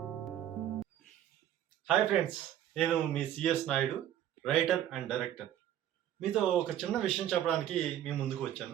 హాయ్ ఫ్రెండ్స్, నేను మీ CS Naidu, writer and director. మీతో ఒక చిన్న విషయం చెప్పడానికి మీ ముందుకు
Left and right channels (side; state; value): left; quieter; 11.3 dB